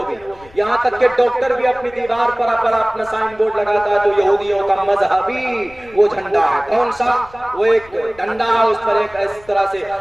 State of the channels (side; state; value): left; noise; rumble, 24 dB below the sound